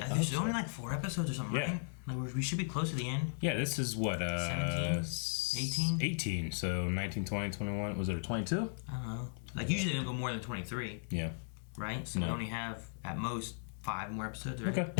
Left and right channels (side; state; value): right; silent; digital silence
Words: only like 4 episodes or something, right? Like we should be close to the end. Yeah, this is what 17, 18. 18. So 19, 20, 21. Was it a 22? I don't know. Like usually they don't go more than 23. Yeah. Right. So we only have at most 5 more episodes. Right? Okay.